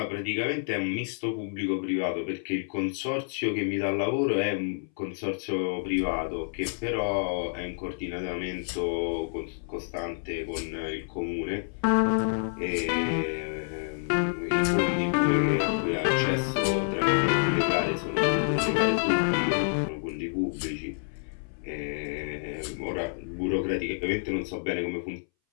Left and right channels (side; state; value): right; silent; 59 dB below the other